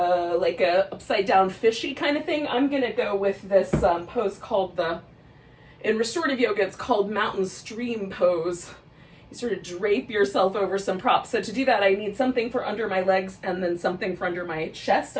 a upside down fishy kind of thing. I'm going to go with this pose called in restorative yoga, it's called mountain stream pose. You sort of drape yourself over some props. So to do that, I need something for under my legs and then something for under my chest,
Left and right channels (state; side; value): identical; both; correlation 1.00